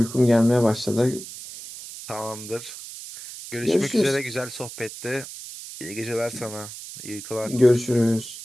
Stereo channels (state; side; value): noise; right; hiss, 12 dB below the sound